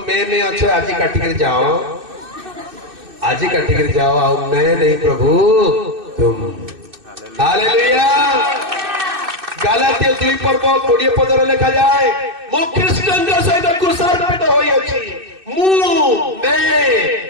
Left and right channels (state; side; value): late; left; 2.6 ms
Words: मैं अच्छो आज काटी कर जाओ आज काटी कर जाओ आओ मैं नहीं प्रभु तुम। हालेलुया। गालातिया 2 पर्व 20 पदर लिखा जाए मो ख्रीष्टन सहित क्रूसार्पित होई अछि मु